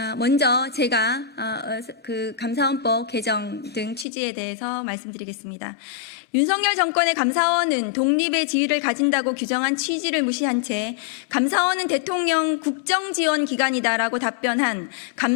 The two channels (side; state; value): right; drops out; at 4.0 s